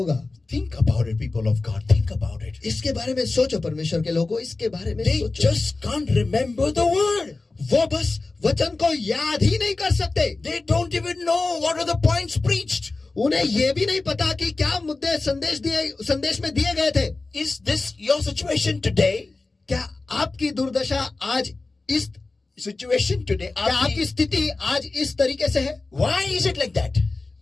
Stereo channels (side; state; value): right; quieter; 3.5 dB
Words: Think about it, people of God. Think about it. इसके बारे में सोचो परमेश्वर के लोगों, इसके बारे में They सोचो। just can't remember the word. वो बस वचन को याद ही नहीं कर सकते। They don't even know what are the points preached. उन्हें ये भी नहीं पता कि क्या मुद्दे संदेश में दिए गए थे। Is this your situation today? क्या आपकी दुर्दशा आज इस Situation today? क्या आपकी स्थिति आज इस तरीके से है? Why is it like that?